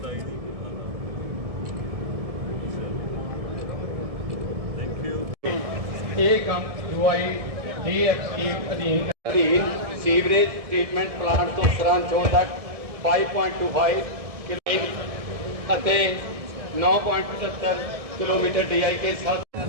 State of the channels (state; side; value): late; left; 1.7 ms